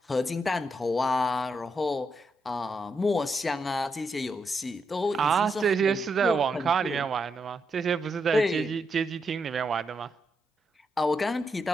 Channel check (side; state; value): both; normal; correlation 0.82